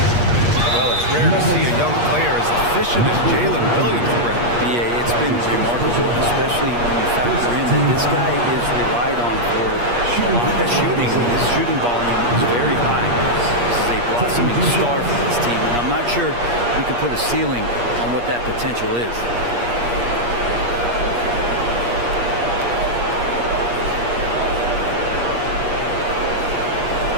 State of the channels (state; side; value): late; left; 8.4 ms